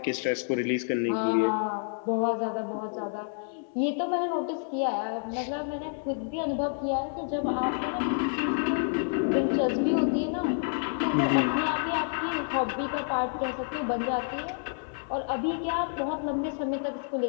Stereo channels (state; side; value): silent; right; 59 dB below the other